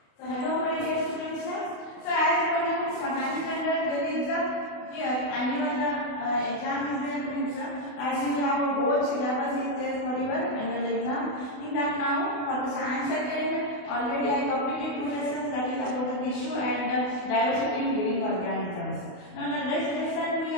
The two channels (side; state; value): right; late; 28 ms